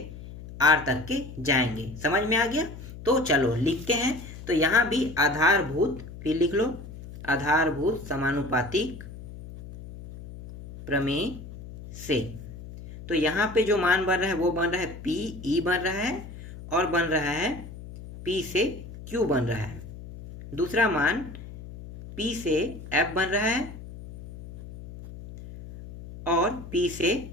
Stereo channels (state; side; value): noise; left; hum, 14 dB below the sound